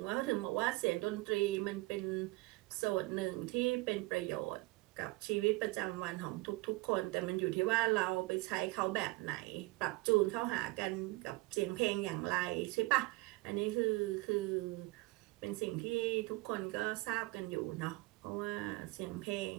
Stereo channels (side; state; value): left; quieter; 22.5 dB